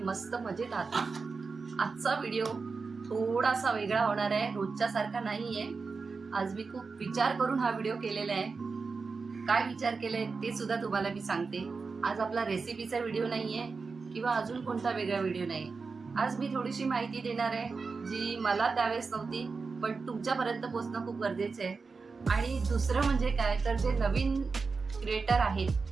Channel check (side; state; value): left; quieter; 4.6 dB